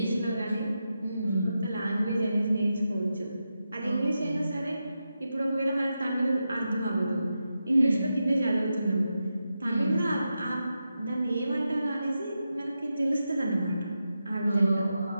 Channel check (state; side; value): inverted; both; correlation -0.89